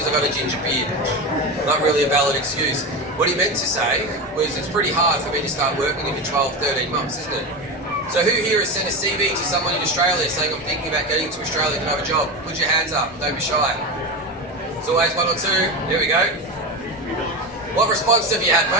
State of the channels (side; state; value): both; normal; correlation 0.21